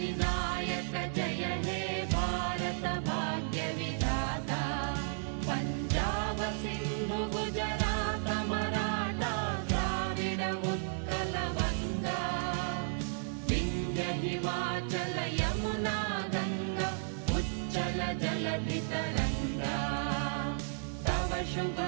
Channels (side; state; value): left; silent; digital silence